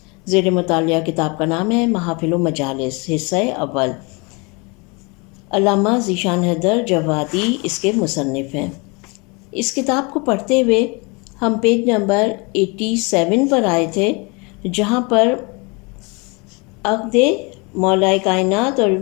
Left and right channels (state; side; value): quieter; right; 29.4 dB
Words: زیر مطالعہ کتاب کا نام ہے محافل و مجالس، حصہ اول۔ علامہ ذیشان حیدر جوادی اس کے مصنف ہیں۔ اس کتاب کو پڑھتے ہوئے ہم پیج نمبر 87 پر آئے تھے، جہاں پر عقد مولائے کائنات اور